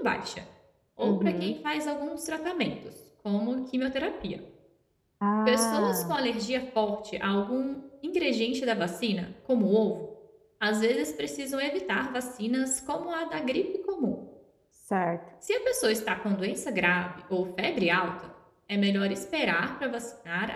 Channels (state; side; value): identical; both; correlation 1.00